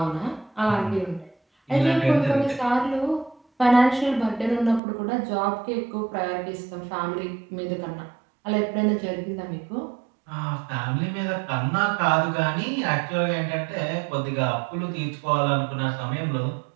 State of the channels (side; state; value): left; drops out; at 4.8 s